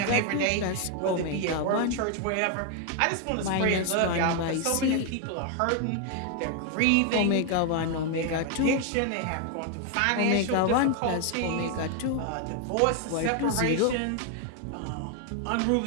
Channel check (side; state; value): both; different; correlation 0.00